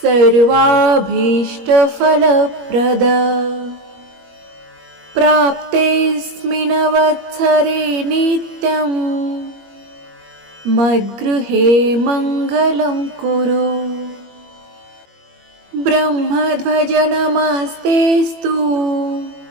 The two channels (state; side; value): late; left; 21 ms